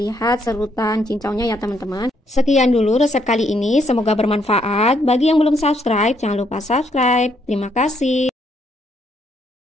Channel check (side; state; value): both; normal; correlation 0.72